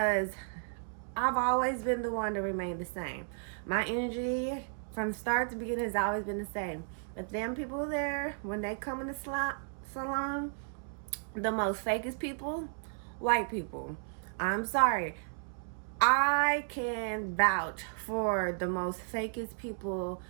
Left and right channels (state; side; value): silent; left; digital silence